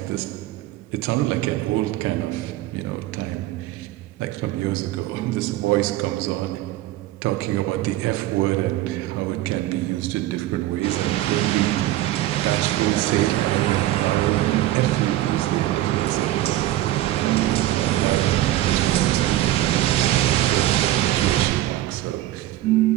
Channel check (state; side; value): quieter; left; 15.1 dB